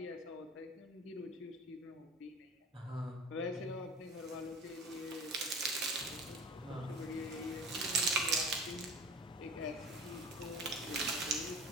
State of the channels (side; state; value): both; normal; correlation 0.38